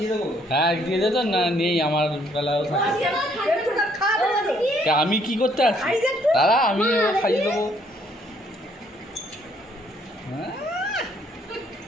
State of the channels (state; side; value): normal; both; correlation 0.66